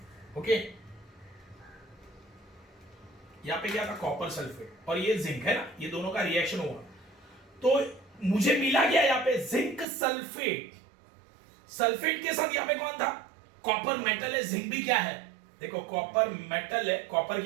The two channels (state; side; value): drops out; left; at 9.9 s